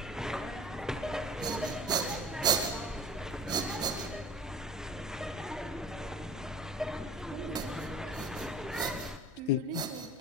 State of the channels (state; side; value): normal; both; correlation 0.43